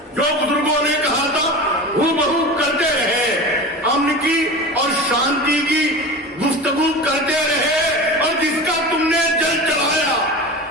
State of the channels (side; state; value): both; normal; correlation 0.31